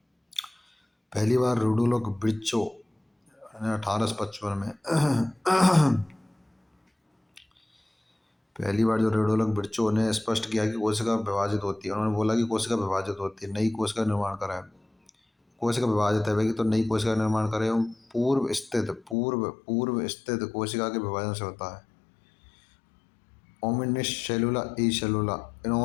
पहली बार रुडोल्फ विर्चो ने 1855 में पहली बार जो रुडोल्फ विर्चो ने स्पष्ट किया कि कोशिका विभाजित होती है। उन्होंने बोला कि कोशिका विभाजित होती है, नई कोशिका का निर्माण करा है। कोशिका विभाजित है कि तो नई कोशिका का निर्माण करे। पूर्व स्थित कोशिका के विभाजन से होता है। ओमिनिस सेलुला ई सेलुला,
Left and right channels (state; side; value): drops out; right; at 19.2 s